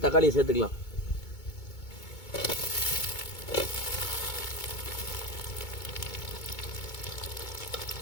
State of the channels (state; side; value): late; right; 2.2 ms